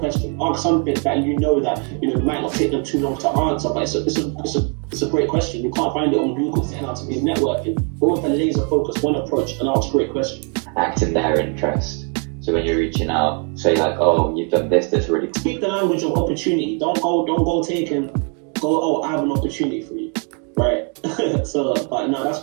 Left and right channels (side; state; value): left; quieter; 39.6 dB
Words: Ask something that you know might not take them too long to answer, but it's a great question. You can't find it on Google. Setting out to be networking. Go with a laser focus, one approach, and ask great questions. Act in their interest. So when you're reaching out, say like, oh, you've done this really. Speak the language of opportunity. Don't go oh, I have an opportunity for you. Right. So, but no, that's